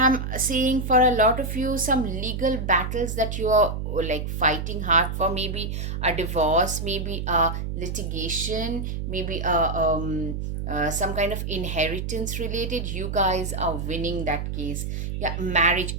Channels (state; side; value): noise; right; hum, 4 dB below the sound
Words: seeing for a lot of you some legal battles that you are like fighting hard for. Maybe a divorce, maybe a litigation, maybe some kind of inheritance related. You guys are winning that case. Yeah, marriage.